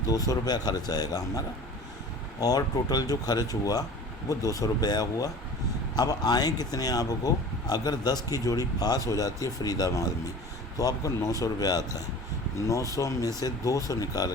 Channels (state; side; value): normal; both; correlation 0.40